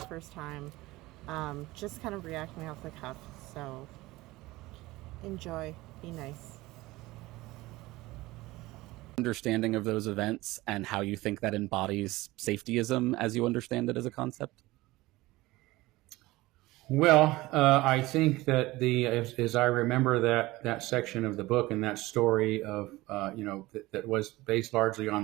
first time, just kind of reacting off the cuff, so enjoy, be nice. Understanding of those events and how you think that embodies safetyism as you understand it as a concept? Well, I think that as I remember that section of the book and that story of, that was based largely on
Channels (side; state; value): left; quieter; 19.4 dB